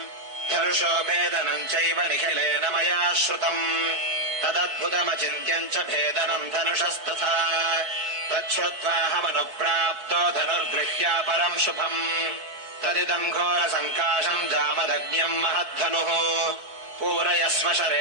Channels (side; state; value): left; late; 4.6 ms